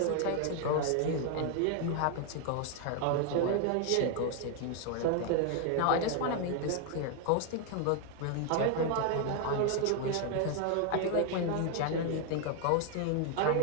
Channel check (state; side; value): different; both; correlation 0.00